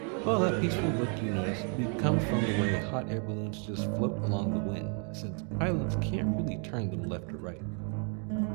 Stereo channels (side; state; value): left; quieter; 39.7 dB